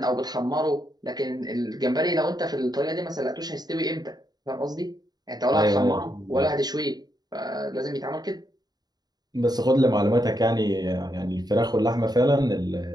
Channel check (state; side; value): late; left; 0.19 ms